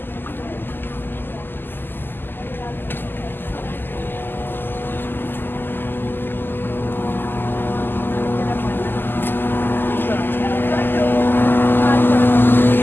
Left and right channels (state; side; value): late; right; 0.095 ms